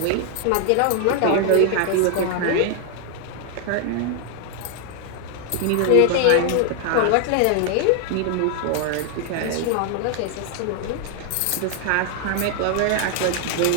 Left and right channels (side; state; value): both; different; correlation 0.00